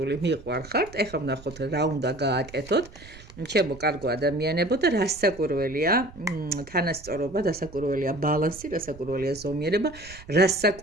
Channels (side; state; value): right; noise; rumble, 18 dB below the sound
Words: მიყვარხართ ეხლა ვნახოთ რა უნდა გააკეთოთ ჩემო კარგო ადამიანებო და რასაკვირველია თანასწორობა, რასაკვირველია ბალანსი, რასაკვირველია ზომიერება,